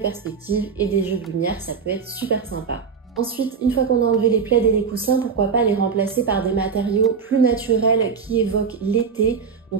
et des jeux de lumière. Ça peut être super sympa. Ensuite, une fois qu'on a enlevé les plaids et les coussins, pourquoi pas les remplacer par des matériaux plus naturels qui évoquent l'été.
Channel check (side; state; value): left; quieter; 6.0 dB